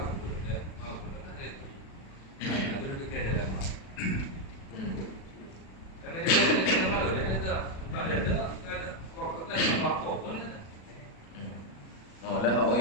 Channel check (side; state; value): right; late; 36 ms